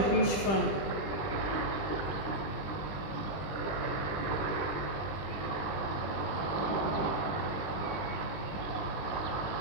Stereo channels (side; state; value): right; late; 20 ms